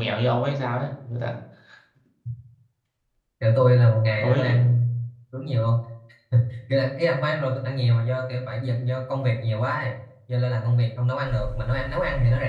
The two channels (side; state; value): both; identical; correlation 1.00